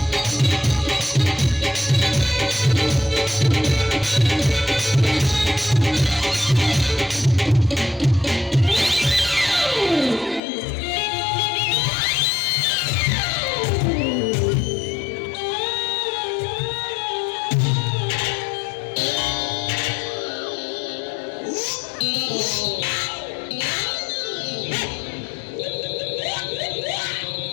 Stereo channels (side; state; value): right; drops out; at 10.4 s